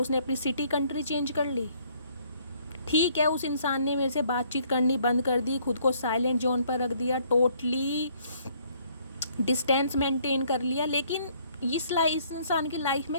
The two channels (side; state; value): both; inverted; correlation -0.63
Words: अपनी सिटी कंट्री चेंज कर ली। ठीक है, उस इंसान ने मेरे से बातचीत करनी बंद कर दी, खुद को साइलेंट जोन पर रख दिया, टोटली डिस्टेंस मेंटेन कर लिया, लेकिन इस इंसान की लाइफ में